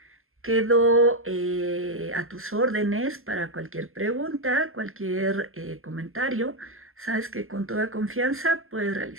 Quedo a tus órdenes para cualquier pregunta, cualquier comentario. Sabes que con toda confianza puedes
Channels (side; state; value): left; late; 0.62 ms